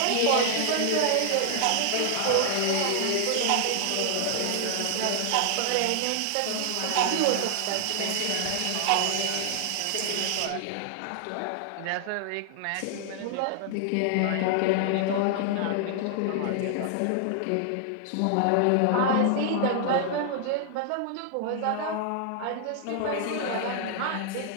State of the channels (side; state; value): both; different; correlation 0.00